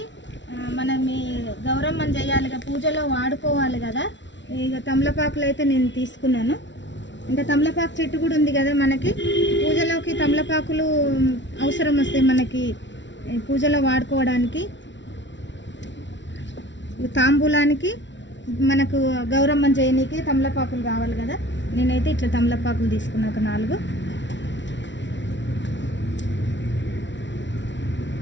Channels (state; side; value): late; right; 0.53 ms